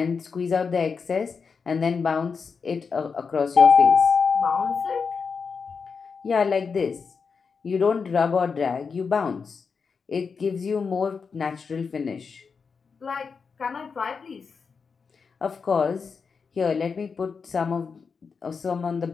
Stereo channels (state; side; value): quieter; right; 5.4 dB